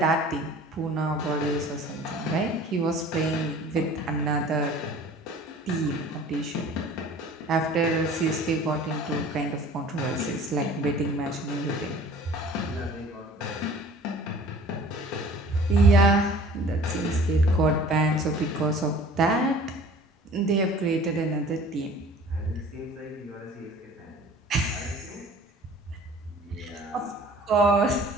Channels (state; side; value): normal; both; correlation 0.47